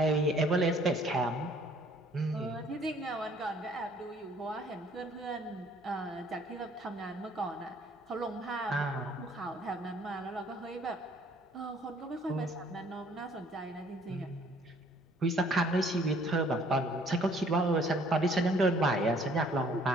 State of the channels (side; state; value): both; normal; correlation 0.59